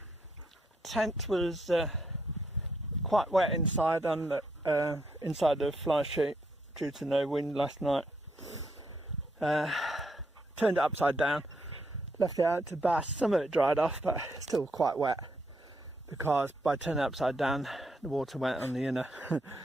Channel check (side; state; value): both; normal; correlation 0.76